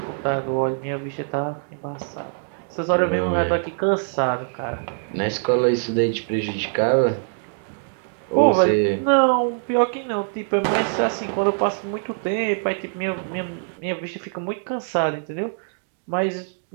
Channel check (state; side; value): silent; left; digital silence